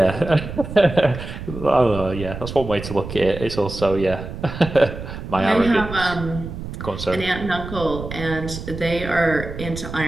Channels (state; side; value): noise; right; rumble, 9 dB below the sound